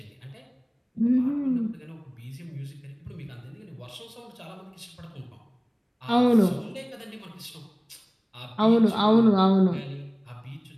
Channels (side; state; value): both; identical; correlation 1.00